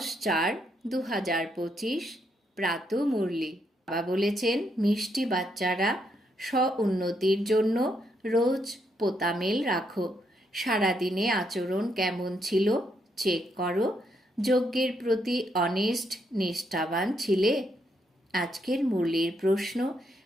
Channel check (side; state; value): both; normal; correlation 0.77